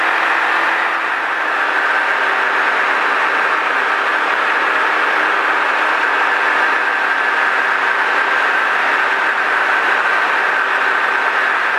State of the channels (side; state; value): both; identical; correlation 1.00